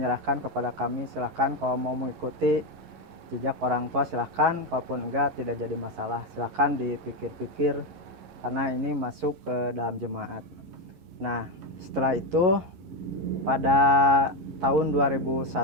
kepada kami, silahkan kalau mau mengikuti jejak orang tua silahkan, kalaupun enggak tidak jadi masalah, silahkan dipikir-pikir karena ini masuk ke dalam jemaat. Nah, setelah itu pada tahun 2001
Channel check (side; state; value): left; late; 11 ms